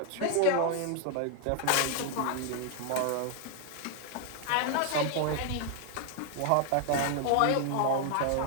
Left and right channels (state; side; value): different; both; correlation 0.00